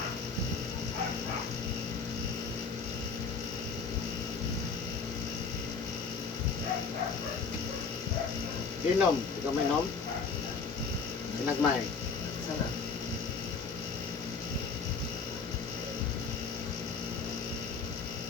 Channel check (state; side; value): quieter; right; 5.0 dB